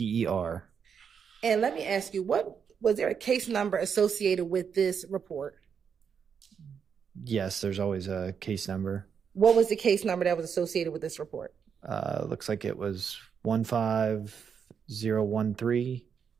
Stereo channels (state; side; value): quieter; left; 7.0 dB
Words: And let me ask you, what was there a case number associated with this report? Yes, there's always a case number. What was the case number that was associated with this report? Looks like it was 15013